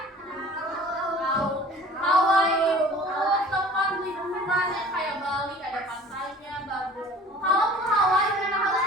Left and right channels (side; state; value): both; normal; correlation 0.46